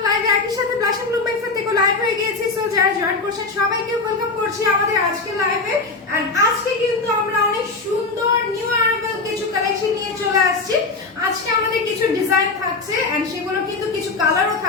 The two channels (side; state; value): right; quieter; 3.9 dB